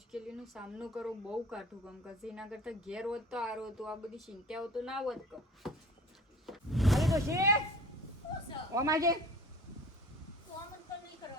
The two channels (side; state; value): both; normal; correlation 0.44